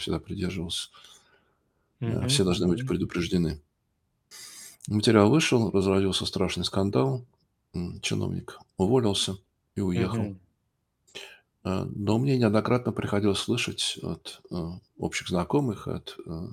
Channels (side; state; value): both; identical; correlation 1.00